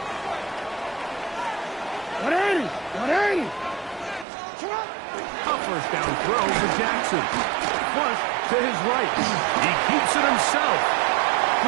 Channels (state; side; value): drops out; left; at 4.2 s